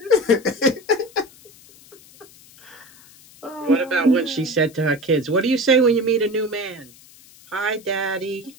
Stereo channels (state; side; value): noise; left; hiss, 24 dB below the sound